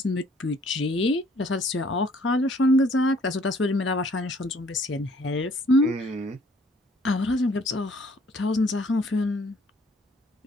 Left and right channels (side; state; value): both; normal; correlation 0.60